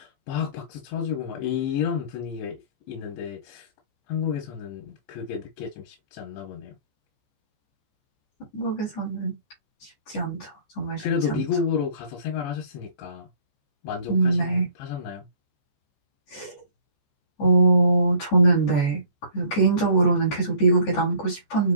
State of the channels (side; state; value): right; late; 14 ms